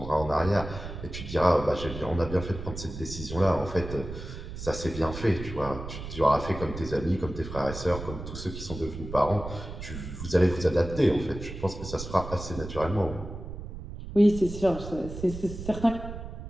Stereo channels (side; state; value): right; noise; rumble, 9 dB below the sound